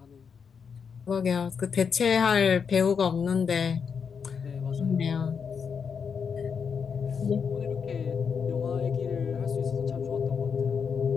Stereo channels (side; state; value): right; quieter; 6.4 dB